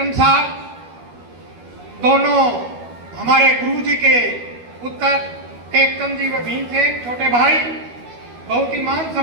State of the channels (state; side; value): late; left; 12 ms